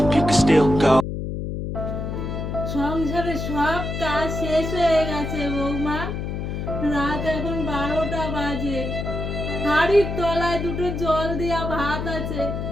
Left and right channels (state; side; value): noise; left; hum, 4 dB below the sound